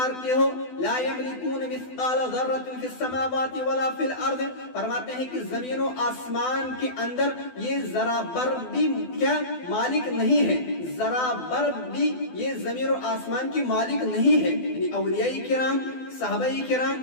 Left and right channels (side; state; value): right; late; 12 ms